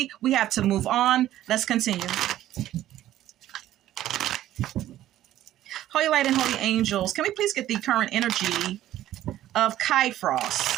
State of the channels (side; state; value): left; quieter; 13.3 dB